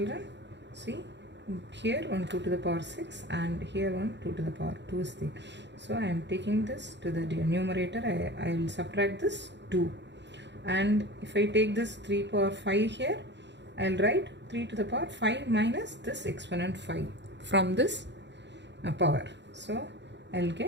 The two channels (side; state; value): left; late; 0.52 ms